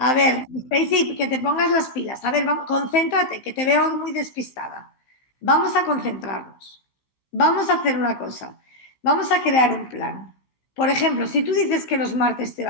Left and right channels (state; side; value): late; right; 15 ms